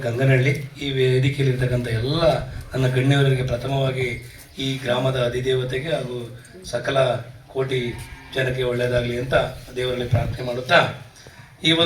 ಗಂಗನಹಳ್ಳಿ ಈ ವೇದಿಕೆಯಲ್ಲಿರ್ತಕ್ಕಂಥ ಎಲ್ಲ ನನ್ನ ಗಣ್ಯವರಿಗೆ ಪ್ರಥಮವಾಗಿ ಈ ಗ್ರಾಮದ ಅಧಿದೇವತೆಗೆ ಹಾಗೂ ಸಕಲ ಕೋಟಿ ಜನಕ್ಕೆ ಒಳ್ಳೆಯದಾಗಲಿ ಅಂತ ದೇವರಲ್ಲಿ ಪ್ರಾರ್ಥನೆ ಮಾಡುತ್ತಾ ಈ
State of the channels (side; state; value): both; identical; correlation 1.00